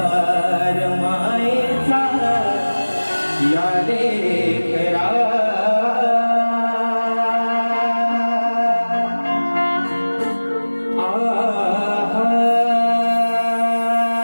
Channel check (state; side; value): inverted; both; correlation -1.00